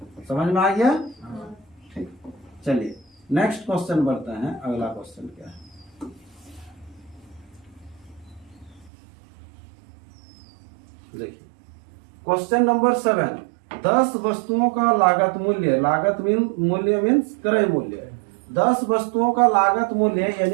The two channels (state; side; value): drops out; left; at 8.9 s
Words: समझ में आ गया, ठीक। चलिए नेक्स्ट क्वेश्चन बढ़ते हैं, अगला क्वेश्चन क्या है, देखिए क्वेश्चन नंबर 7। 10 वस्तुओं का लागत मूल्य, लागत मूल्य मीन्स क्रय मूल्य, 10 वस्तुओं का लागत मूल्य